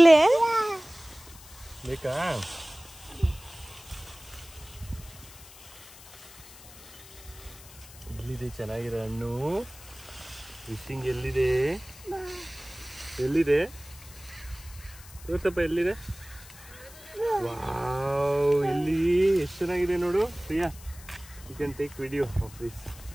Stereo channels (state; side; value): noise; left; hiss, 19 dB below the sound